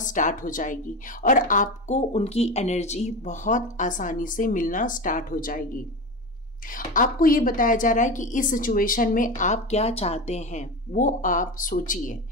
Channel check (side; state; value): both; normal; correlation 0.23